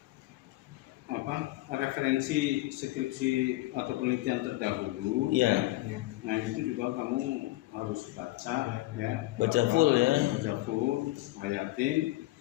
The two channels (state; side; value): quieter; right; 18.7 dB